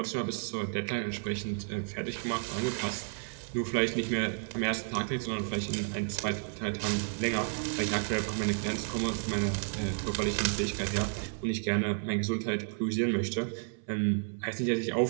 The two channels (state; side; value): silent; left; 57 dB below the other